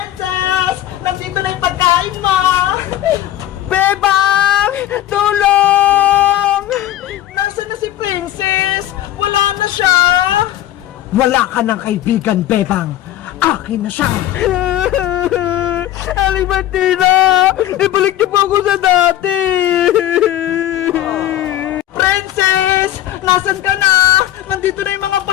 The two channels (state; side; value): quieter; right; 13.1 dB